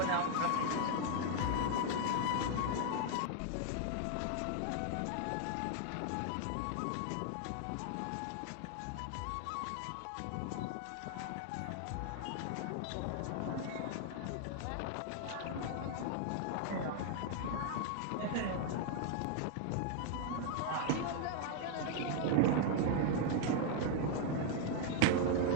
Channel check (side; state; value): both; different; correlation 0.00